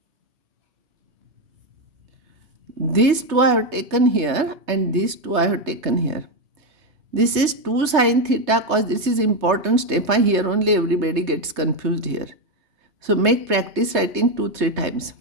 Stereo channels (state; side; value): late; left; 3.3 ms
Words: These two I have taken here and these two I have taken here. This is 2 sin theta cos, this is important step. Here only everybody gets confused here. So make practice writing 2-3 times.